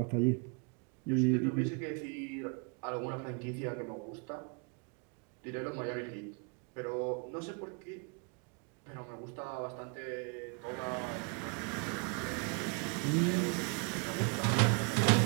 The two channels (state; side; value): quieter; left; 36.9 dB